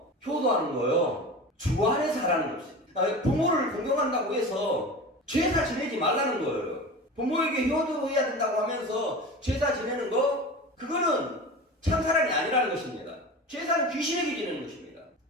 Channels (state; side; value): normal; both; correlation 0.32